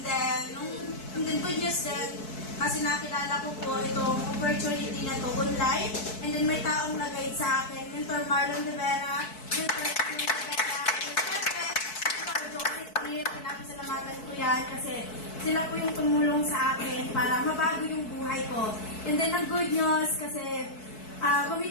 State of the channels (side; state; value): right; late; 4.6 ms